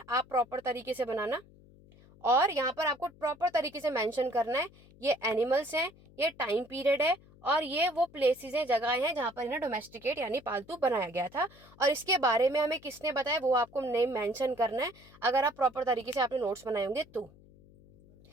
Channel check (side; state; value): left; noise; hum, 25 dB below the sound